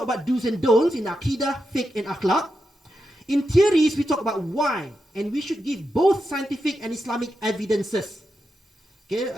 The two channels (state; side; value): normal; both; correlation 0.87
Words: about do's and don'ts in Aqidah, Fiqh, and Akhlaq. In theories, we talk about why, and we should give both scientific and Islamic evidences. Okay,